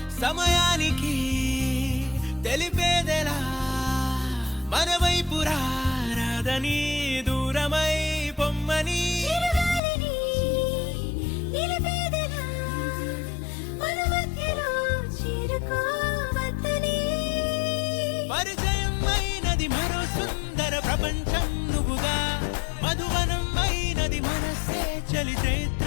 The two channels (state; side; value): drops out; right; at 9.8 s